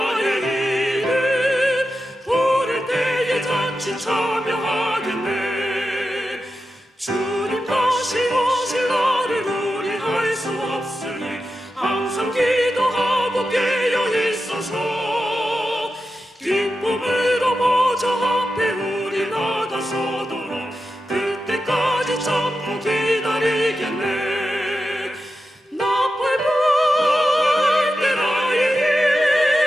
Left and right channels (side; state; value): both; normal; correlation 0.90